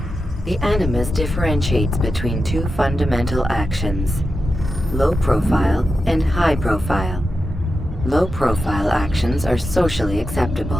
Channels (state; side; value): normal; both; correlation 0.90